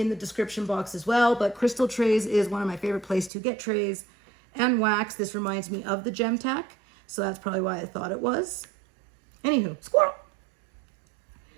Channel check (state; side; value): drops out; left; at 3.3 s